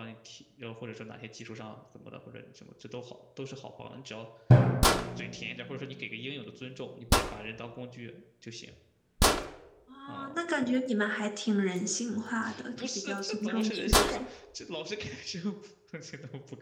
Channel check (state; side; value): identical; both; correlation 1.00